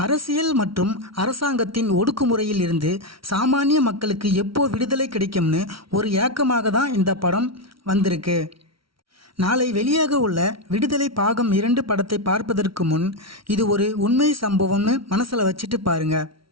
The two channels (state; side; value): late; left; 0.75 ms